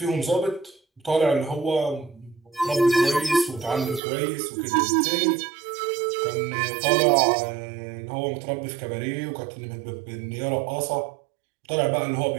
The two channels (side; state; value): left; drops out; at 4.0 s